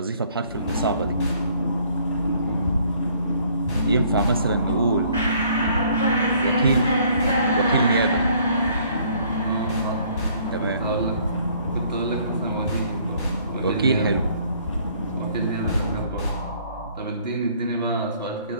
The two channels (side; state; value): both; inverted; correlation -0.61